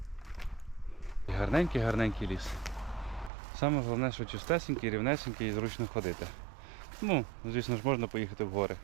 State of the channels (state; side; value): drops out; left; at 3.3 s